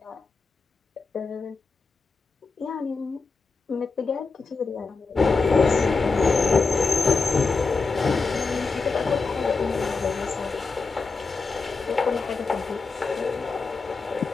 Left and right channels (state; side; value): quieter; right; 4.3 dB